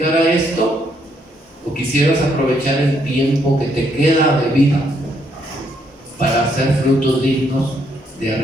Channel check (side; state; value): both; normal; correlation 0.72